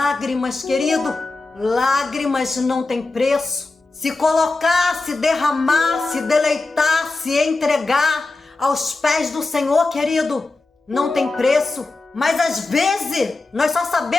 querido, lágrimas não tem preço. Se colocar, se derramar, se deleitar, se entregar aos pés do Senhor, querido, não tem preço. Mas às vezes nós só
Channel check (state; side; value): quieter; right; 3.4 dB